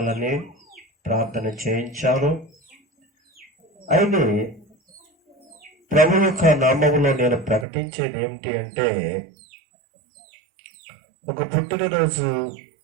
ప్రార్థన చేయించారు. అయితే ప్రభు యొక్క నామములో నేను ప్రకటించేది ఏమిటి అంటే, ఒక పుట్టినరోజు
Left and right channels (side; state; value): left; drops out; at 7.7 s